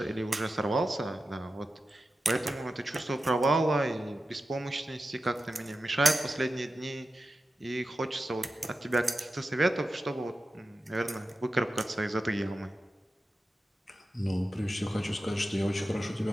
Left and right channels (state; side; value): normal; both; correlation 0.92